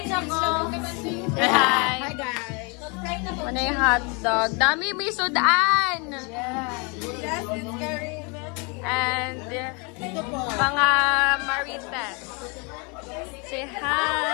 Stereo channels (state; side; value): quieter; right; 32.1 dB